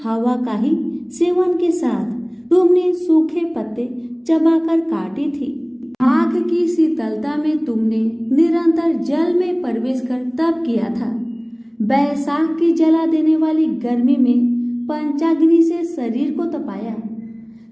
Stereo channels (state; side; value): identical; both; correlation 1.00